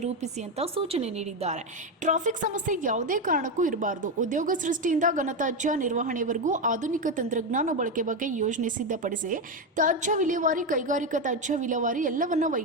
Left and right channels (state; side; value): normal; both; correlation 0.10